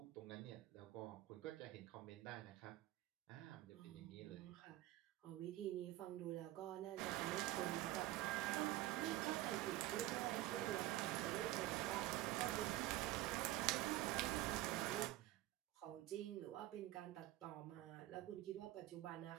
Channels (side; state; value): left; quieter; 15.9 dB